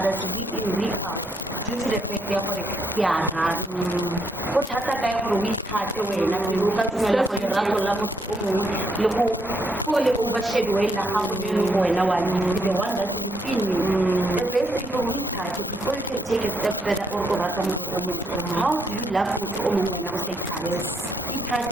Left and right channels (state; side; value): normal; both; correlation 0.76